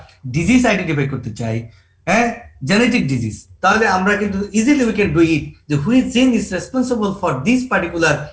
disease identify করতে চাই, জেনেটিক ডিজিজ, তাহলে আমরা কিন্তু easily we can do it, যে which gene is responsible for this particular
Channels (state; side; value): identical; both; correlation 1.00